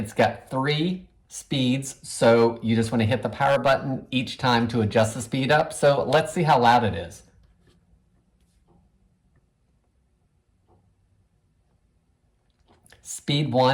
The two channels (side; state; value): both; identical; correlation 1.00